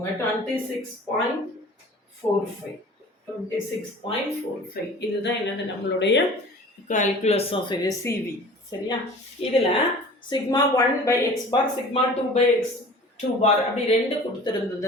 26.45. 26.45 இதுதான் என்னது நம்மளுடைய கால்குலஸ் ஆஃப் சிவி. சரியா? இதில் சிக்மா 1/x பார், சிக்மா 2/x2 பார் அப்படி ரெண்டு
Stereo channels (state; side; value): normal; both; correlation 0.43